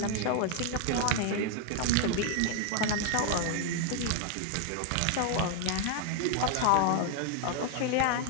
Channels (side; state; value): both; different; correlation 0.00